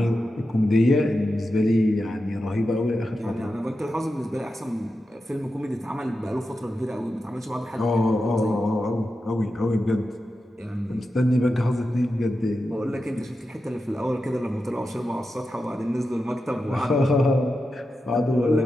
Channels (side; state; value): both; normal; correlation 0.90